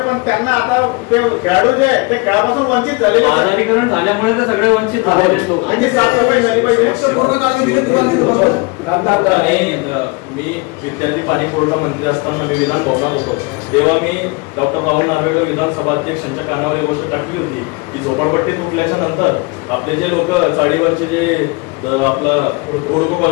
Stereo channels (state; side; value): quieter; right; 27.2 dB